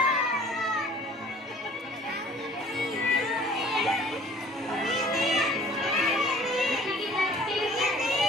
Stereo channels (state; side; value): normal; both; correlation 0.51